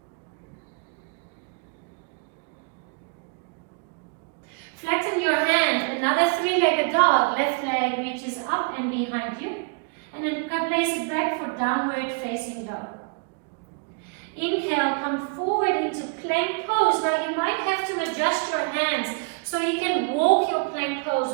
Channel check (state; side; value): quieter; left; 33.3 dB